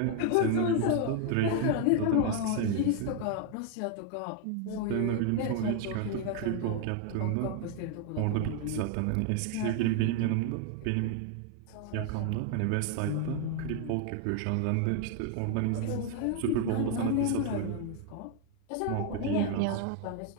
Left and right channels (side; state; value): both; different; correlation 0.01